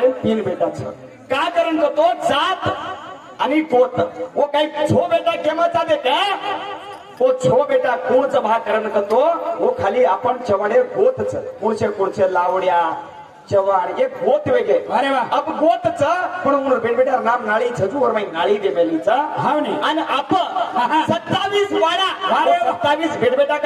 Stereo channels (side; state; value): both; identical; correlation 1.00